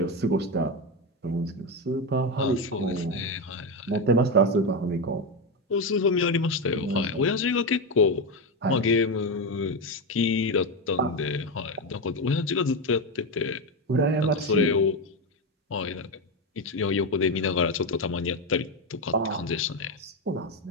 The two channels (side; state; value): both; normal; correlation 0.11